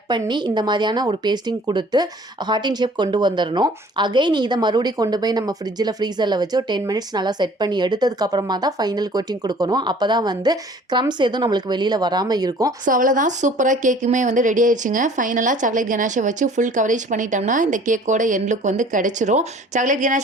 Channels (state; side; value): normal; both; correlation 0.51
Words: பண்ணி இந்த மாதிரியான ஒரு பேஸ்டிங் கொடுத்து ஹார்ட்டின் ஷேப் கொண்டு வந்துடணும். அகைன் இதை மறுபடியும் கொண்டு போய் நம்ம ஃப்ரிட்ஜில் ஃப்ரீசரில் வச்சு ஒரு 10 மினிட்ஸ் நல்லா செட் பண்ணி எடுத்ததுக்கப்புறமா தான் ஃபைனல் கோட்டிங் கொடுக்கணும். அப்போ தான் வந்து க்ரம்ஸ் எதுவும் நம்மளுக்கு வெளியில் வராமல் இருக்கும். ஸோ அவ்வளோதான், சூப்பராக கேக்குமே வந்து ரெடி ஆயிடுச்சுங்க. ஃபைனலாக சாக்லேட் கனாஷை வச்சு ஃபுல் கவரேஜ் பண்ணிட்டோம்னா இந்த கேக்கோட எண்ட் லுக் வந்து கிடைச்சிரும். சாக்லேட்